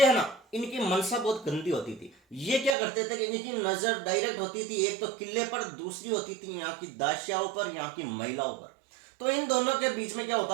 है ना, इनकी मनसा बहुत गंदी होती थी। ये क्या करते थे कि इनकी नजर डायरेक्ट होती थी एक तो किले पर, दूसरी होती थी यहाँ की दासियाओं पर, यहाँ की महिलाओं पर। तो इन दोनों के बीच में क्या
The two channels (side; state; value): left; drops out; at 2.8 s